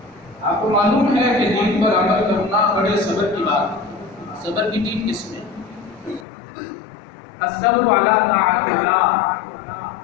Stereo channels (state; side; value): drops out; right; at 6.2 s